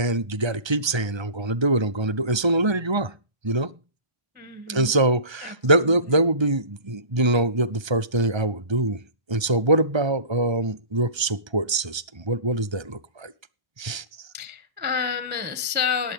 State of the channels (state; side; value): late; left; 1.3 ms